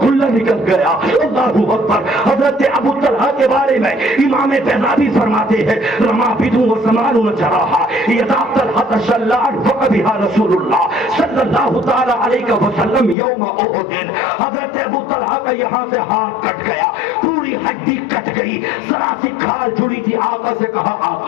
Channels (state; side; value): drops out; right; at 13.2 s